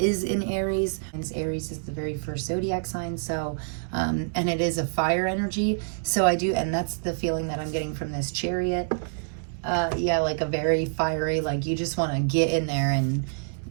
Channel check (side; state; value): left; silent; digital silence